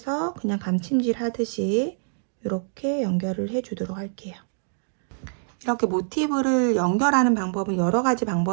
그냥 감침질 하듯이 이렇게 연결을 해 주도록 할게요. 이렇게 모티브를 연결하는 방법은 여러 가지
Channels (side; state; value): left; silent; digital silence